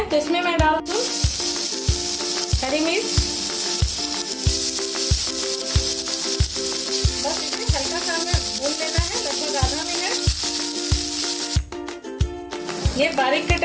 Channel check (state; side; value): identical; both; correlation 1.00